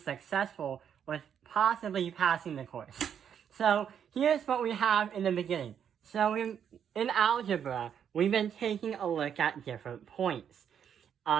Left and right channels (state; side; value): quieter; left; 8.4 dB